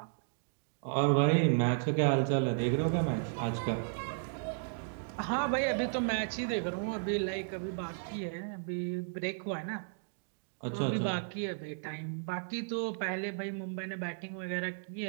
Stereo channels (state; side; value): silent; left; digital silence